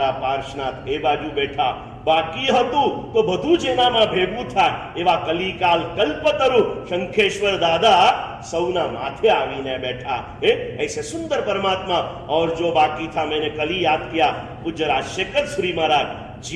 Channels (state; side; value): identical; both; correlation 1.00